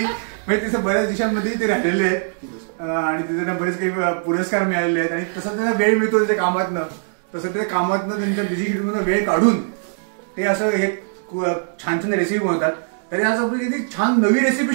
म्हणजे बऱ्याच देशांमध्ये ते राहिलेले आहेत आणि तिथे त्यांना बरेच काही पुरस्कार मिळालेले आहेत आणि तसं त्यांना वेळ मिळतो त्यांच्या कामातनं, तसं ते कामातनं त्यांच्या बिझी शेड्यूल मधून वेळ काढून ते असं हे छान छान रेसिपी बनवतात. तरी आज आपण किती छान नवी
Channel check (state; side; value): silent; left; digital silence